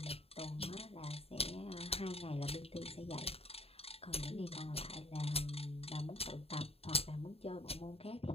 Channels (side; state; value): right; late; 0.29 ms